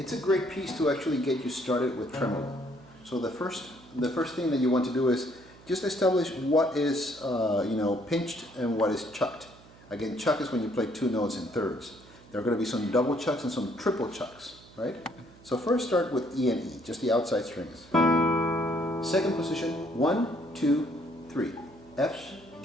a great piece to actually get you started with tremolo. So the first thing that you want to do is just establish what is pinched and what is chucked. Again, chuck is when you play two notes in thirds. There are going to be some double chucks and some triple chucks, right? So first start with E and E, just the outside strings. Second position, 1, 2, 3, F,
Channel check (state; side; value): noise; right; hum, 23 dB below the sound